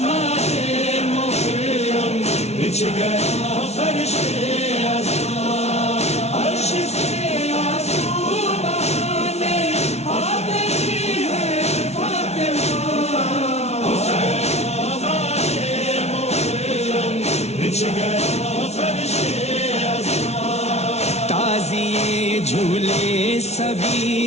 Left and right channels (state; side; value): late; right; 0.31 ms